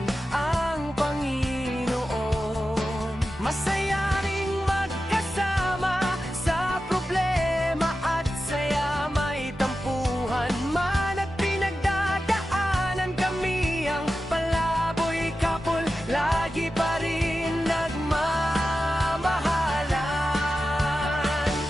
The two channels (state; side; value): normal; both; correlation 0.92